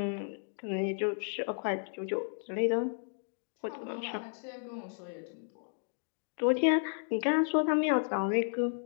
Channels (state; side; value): silent; right; digital silence